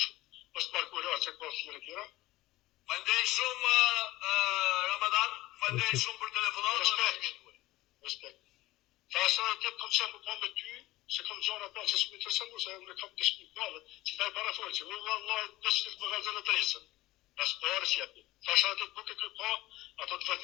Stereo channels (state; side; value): quieter; right; 17.9 dB